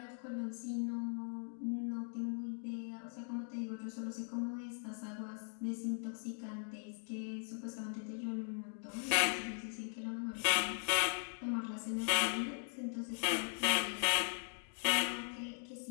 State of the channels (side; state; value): right; silent; 51 dB below the other